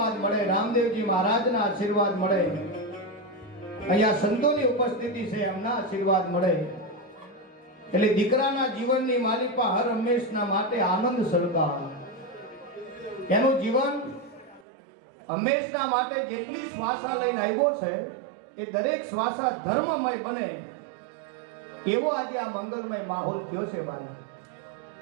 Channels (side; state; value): left; drops out; at 14.7 s